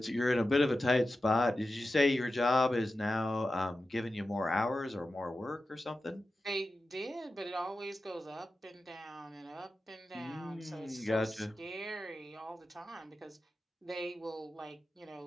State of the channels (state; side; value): normal; both; correlation 0.92